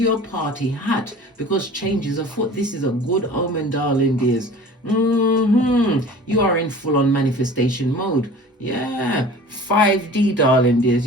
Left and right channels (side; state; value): both; normal; correlation 0.42